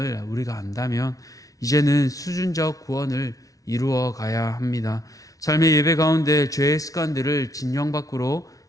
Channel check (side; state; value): right; late; 0.17 ms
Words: 우리가 안다면 이제는 수준적 구원을 이루어 가야 합니다. 삶의 예배 가운데 죄의 습관들을 진영 밖으로